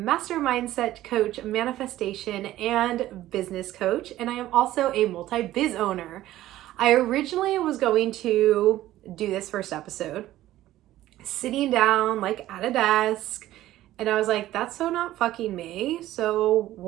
mindset coach, manifestation, and business coach. And I am also a multi-biz owner. I originally was going to do this first episode sitting down like at a desk, and I was like, that's so not fucking me. So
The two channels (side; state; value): left; quieter; 14.6 dB